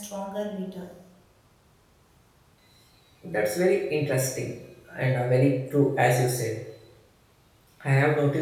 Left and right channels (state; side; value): identical; both; correlation 1.00